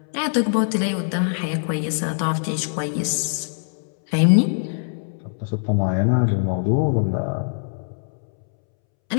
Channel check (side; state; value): right; silent; 64 dB below the other